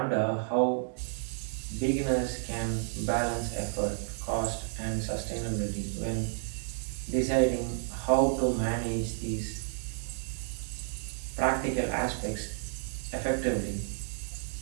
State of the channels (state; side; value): silent; left; 57 dB below the other